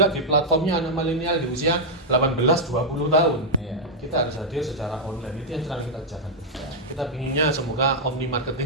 di platformnya anak milenial di usia 18-20 tahun. Kita harus hadir secara online. Itu yang sedang kita kerjakan. Kita pinginnya semoga omni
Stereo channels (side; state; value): both; normal; correlation -0.04